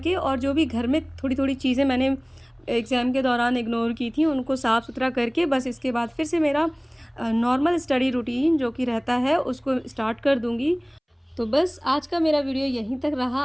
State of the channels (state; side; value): identical; both; correlation 1.00